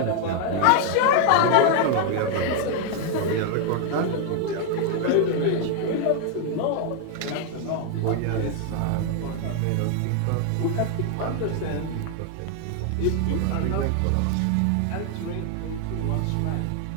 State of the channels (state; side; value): different; both; correlation 0.00